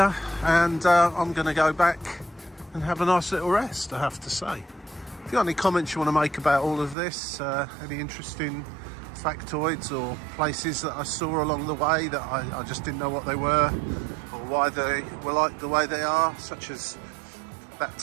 and I'm going to go back and have a nice little rest, I have to say. If you've got any comments you want to make about all of this, any interesting factoids or places that I saw along the way that I just didn't know what they were or why they were like the way they are, such as that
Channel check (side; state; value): left; drops out; at 7.0 s